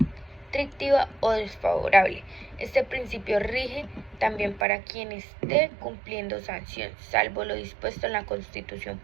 o desfavorable. Este principio rige también para quien esté cumpliendo sanción, salvo lo dispuesto en la Constitución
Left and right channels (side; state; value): left; drops out; at 4.7 s